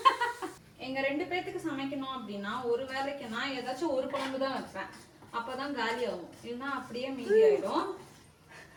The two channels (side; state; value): both; identical; correlation 1.00